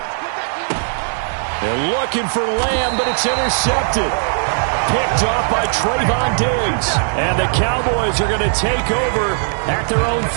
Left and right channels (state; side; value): silent; left; 67 dB below the other